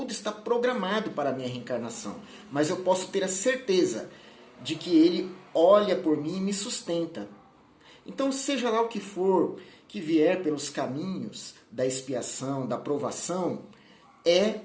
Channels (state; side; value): identical; both; correlation 1.00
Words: está programado para a minha reencarnação. Mas eu posso ter a certeza de que Ele olha por mim e me sustenta. Então, seja lá o que for que vier pelos caminhos da expiação, da provação, é